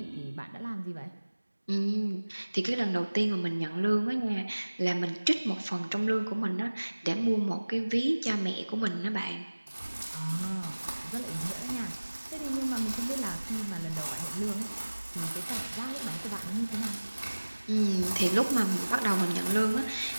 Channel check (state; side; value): inverted; both; correlation -1.00